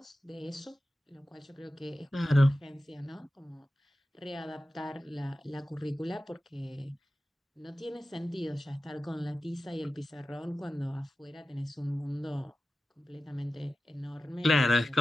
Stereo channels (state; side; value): normal; both; correlation 0.94